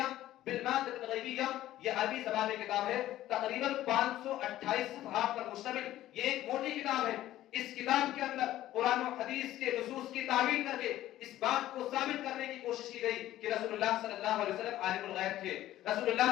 بالمادة الغیبیہ، یہ عربی زبان میں کتاب ہے، تقریباً 528 صفحات پر مشتمل یہ ایک موٹی کتاب ہے۔ اس کتاب کے اندر قرآن و حدیث کے نصوص کی تعویل کر کے اس بات کو ثابت کرنے کی کوشش کی گئی کہ رسول اللہ صلی اللہ علیہ وسلم عالم الغیب تھے، رسول اللہ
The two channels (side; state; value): right; quieter; 14.1 dB